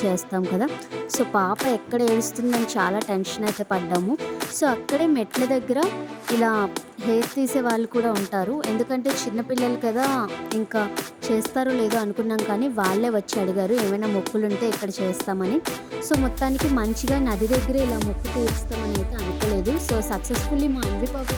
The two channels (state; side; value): identical; both; correlation 1.00